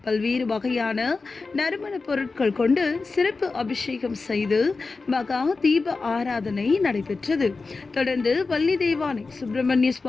பல்வேறு வகையான நறுமண பொருட்கள் கொண்டு சிறப்பு அபிஷேகம் செய்து மகா தீப ஆராதனை நடைபெற்றது. தொடர்ந்து வள்ளி தெய்வானை சுப்பிரமணிய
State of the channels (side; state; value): right; quieter; 4.0 dB